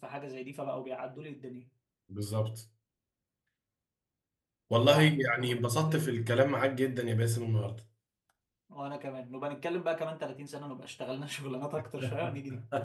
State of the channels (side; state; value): both; identical; correlation 1.00